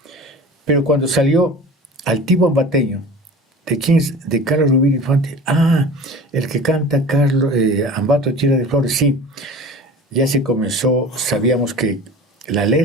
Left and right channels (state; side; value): normal; both; correlation 0.38